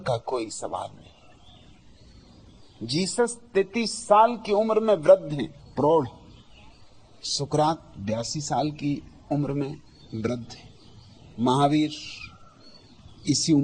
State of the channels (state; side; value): identical; both; correlation 1.00